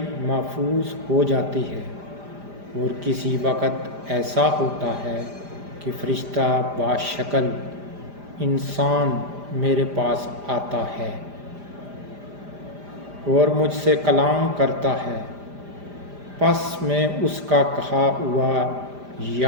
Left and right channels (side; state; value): left; late; 5.0 ms